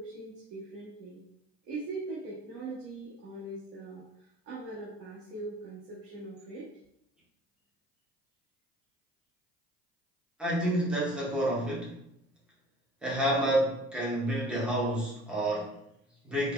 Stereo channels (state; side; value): normal; both; correlation 0.49